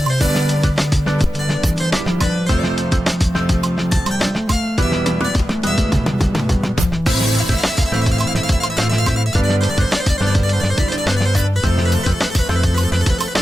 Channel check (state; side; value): normal; both; correlation 0.92